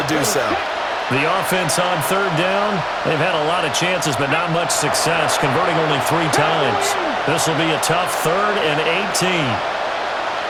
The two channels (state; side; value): identical; both; correlation 1.00